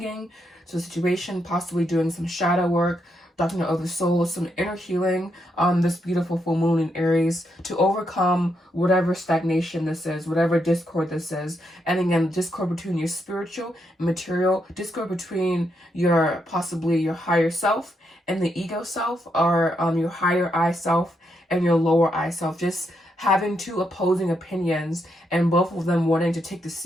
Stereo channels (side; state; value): both; normal; correlation 0.80